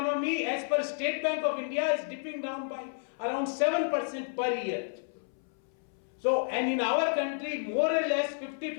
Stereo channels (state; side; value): silent; right; 57 dB below the other